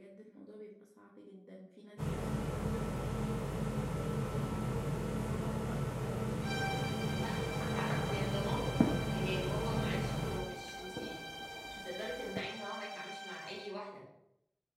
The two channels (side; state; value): both; identical; correlation 1.00